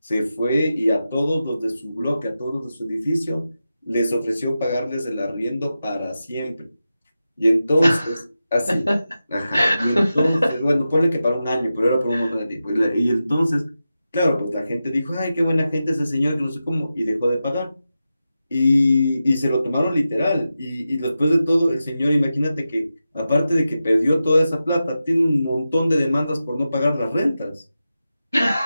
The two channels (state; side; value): inverted; both; correlation -0.91